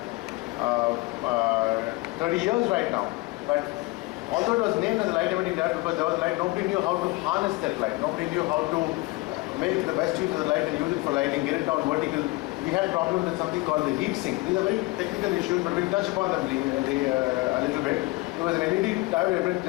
30 years right now. But although it was named as a light emitting diode because there was light, nobody knew how to harness that light. Nobody knew how to make the best use of the light and use it for lighting, get it down vertical. We had problems with something called the heat sink. These are very technical issues, but we'll touch upon them a little bit. Because an LED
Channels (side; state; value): right; quieter; 22.8 dB